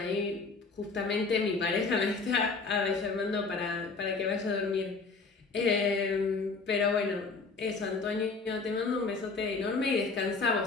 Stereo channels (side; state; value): right; quieter; 4.2 dB